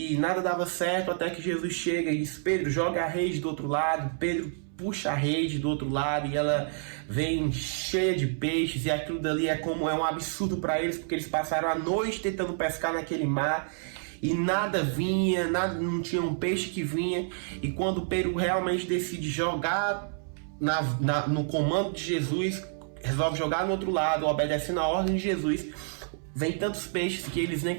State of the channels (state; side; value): silent; left; 59 dB below the other